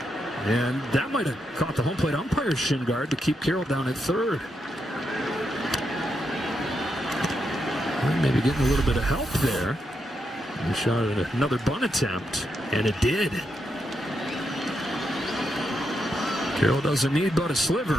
And that might have caught the home plate umpire's shin guard to keep Carroll down at third. Well, maybe getting a little bit of help there. He shot at another bunt attempt, and it did. Carroll doesn't need but a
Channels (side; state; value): both; normal; correlation 0.82